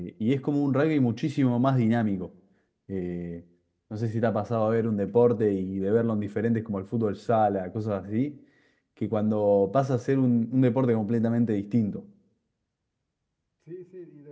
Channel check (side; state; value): both; identical; correlation 1.00